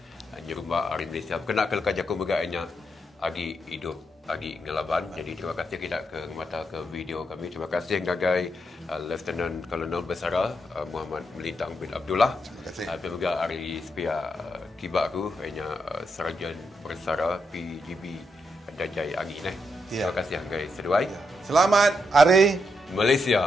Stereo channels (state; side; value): normal; both; correlation 0.81